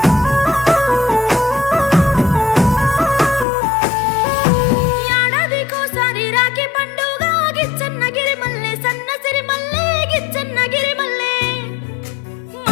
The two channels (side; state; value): right; drops out; at 3.5 s